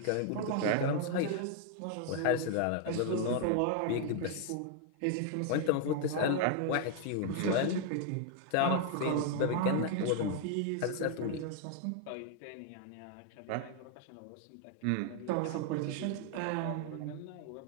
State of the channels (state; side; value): different; both; correlation 0.00